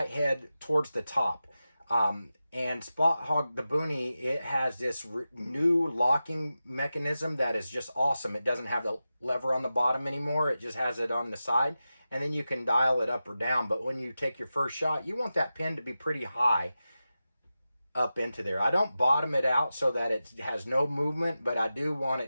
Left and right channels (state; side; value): inverted; both; correlation -0.93